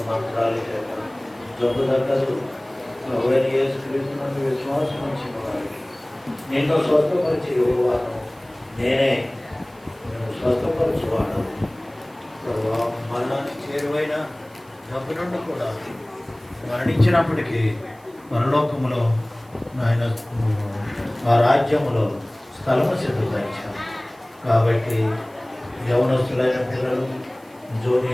మంత్రాల చేత జబ్బు తగ్గదు. ప్రభువైన యేసుక్రీస్తునందు విశ్వాసం ఇచ్చిన వారికి నిన్ను స్వస్థపరిచి యువవాను నేనే, నేను స్వస్థపరచువాడు ప్రభు. మరణానికి చేరువైన జబ్బు నుండి కూడా మరణించినప్పటికీ పరలోకములో ఆయన ఆ రాజ్యములో స్థలము సిద్ధపరిచారు. కాబట్టి యవనస్తులైన పిల్లలు,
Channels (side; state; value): right; noise; hiss, 29 dB below the sound